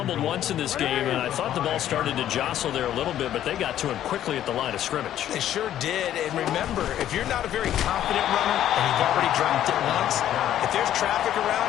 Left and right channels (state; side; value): quieter; right; 11.6 dB